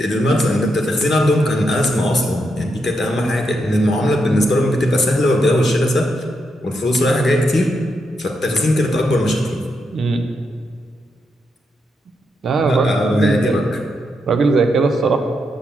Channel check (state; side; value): normal; both; correlation 0.82